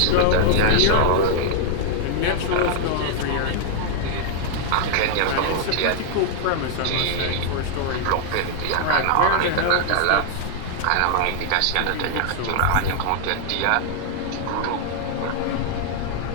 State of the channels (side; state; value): both; different; correlation 0.00